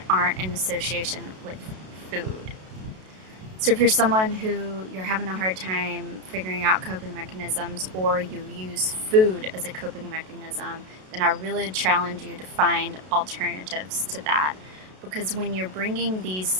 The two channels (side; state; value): left; late; 32 ms